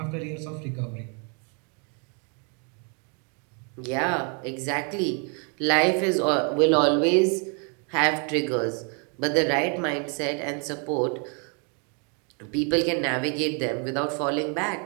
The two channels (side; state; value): left; quieter; 37.3 dB